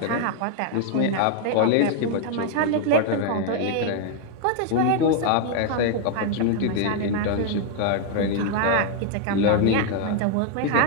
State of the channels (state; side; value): different; both; correlation 0.00